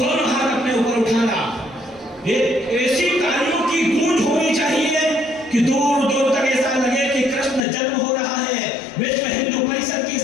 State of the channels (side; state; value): right; drops out; at 7.7 s